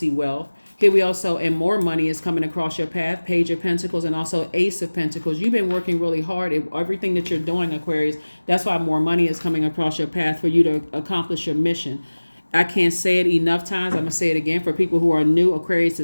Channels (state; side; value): inverted; both; correlation -1.00